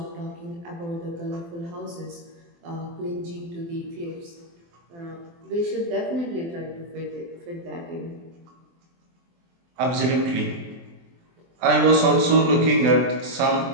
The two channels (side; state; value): left; late; 24 ms